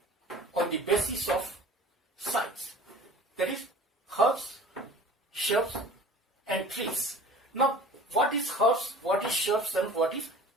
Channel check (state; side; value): normal; both; correlation 0.44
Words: on the basis of size. That is herbs, shrubs and trees. Now, what is herbs, what is shrubs and what is